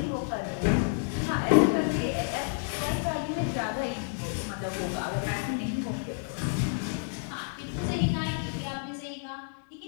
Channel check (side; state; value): right; silent; digital silence